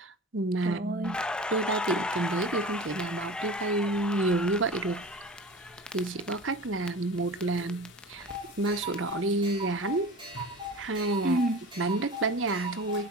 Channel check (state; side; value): normal; both; correlation 0.35